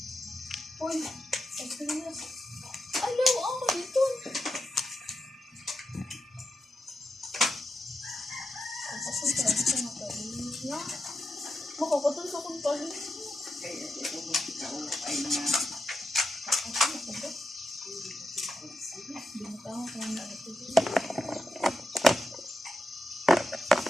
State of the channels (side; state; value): both; normal; correlation 0.87